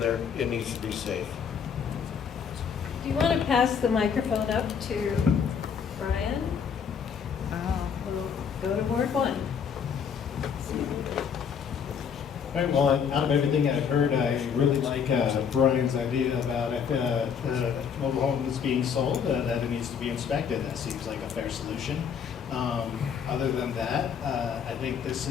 it needs to be safe. Do you want to pass the microphone up to Brian? We'll go to Ward 1. All right, well, out of everything I've heard, I really like Brian's idea about mobile homes being sold, that it needs to be inspected. That seems like a fair solution. Other than that, I think this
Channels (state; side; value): quieter; right; 7.1 dB